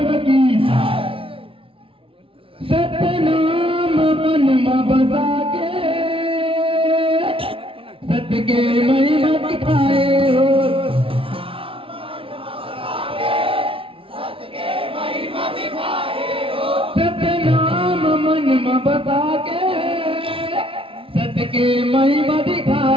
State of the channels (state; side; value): late; left; 0.26 ms